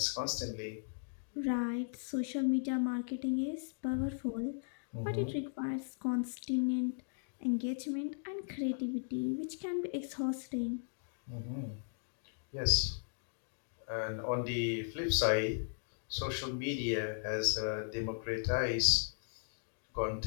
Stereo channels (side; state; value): right; silent; digital silence